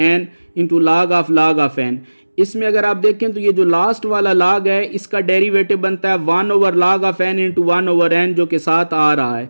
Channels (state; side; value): inverted; both; correlation -1.00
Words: n into log of n. इसमें अगर आप देखें तो ये जो लास्ट वाला log है इसका डेरिवेटिव बनता है 1/log of n into 1/n जो के साथ आ रहा है.